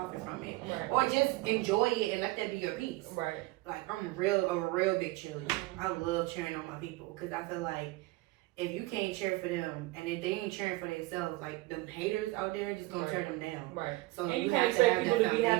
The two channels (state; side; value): quieter; left; 20.7 dB